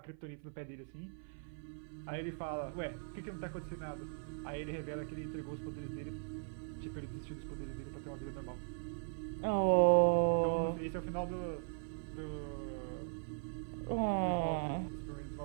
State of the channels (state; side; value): silent; left; 51 dB below the other